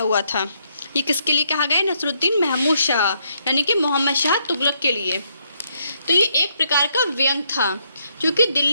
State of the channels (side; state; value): both; inverted; correlation -0.74